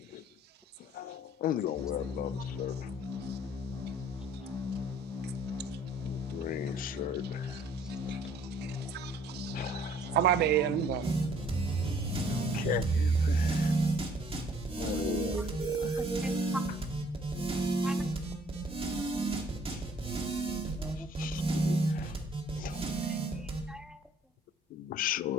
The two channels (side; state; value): both; normal; correlation 0.58